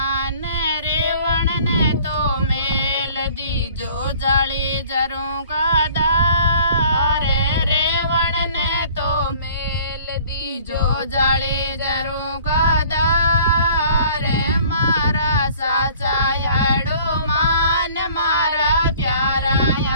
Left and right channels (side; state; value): both; inverted; correlation -0.51